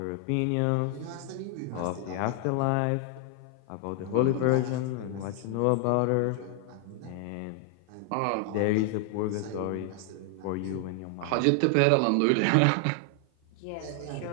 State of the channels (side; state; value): both; different; correlation 0.00